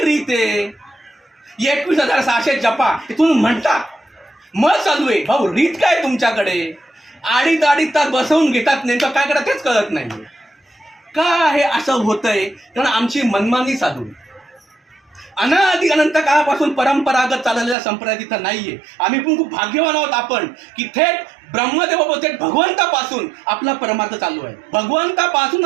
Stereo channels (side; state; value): left; drops out; at 17.8 s